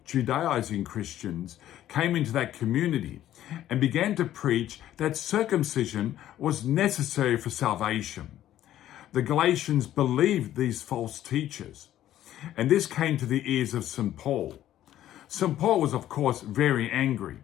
Judaizing Christians, came into that community and began to preach that circumcision was necessary for salvation. The Galatians believed these false teachers, and this came to the ears of St. Paul. St. Paul was, of course, very angry.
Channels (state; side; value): quieter; right; 12.6 dB